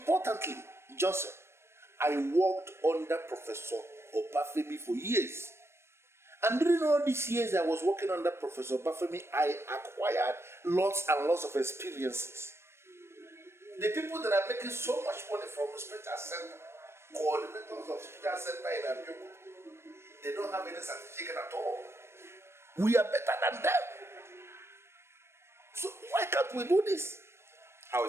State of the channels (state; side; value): late; left; 0.12 ms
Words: Johnson, I worked under Professor Obafemi for years. And during all these years I was working under Professor Obafemi, I acquired lots and lots of experiences. The people that are making so much money from the Special Center, coordinators of Special Center in Abeokuta, they don't have any certificate at all. We are better than them. So why can't we do this? How